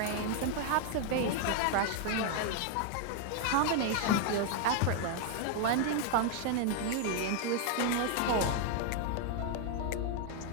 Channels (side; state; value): both; different; correlation 0.00